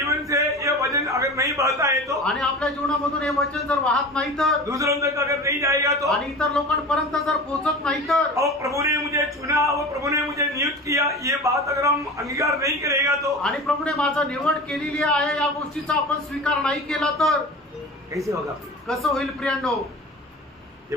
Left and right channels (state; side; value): normal; both; correlation 0.34